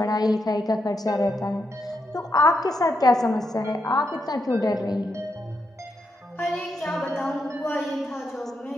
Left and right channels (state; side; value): normal; both; correlation 0.82